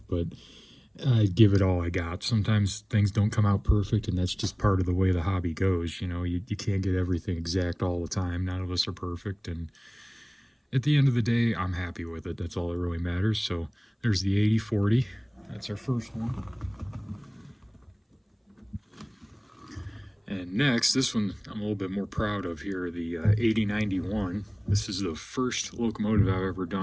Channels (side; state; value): both; identical; correlation 1.00